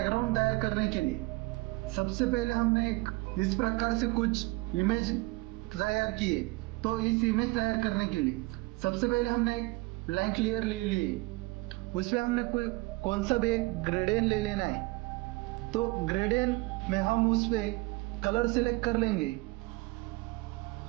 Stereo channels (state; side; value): quieter; left; 23.7 dB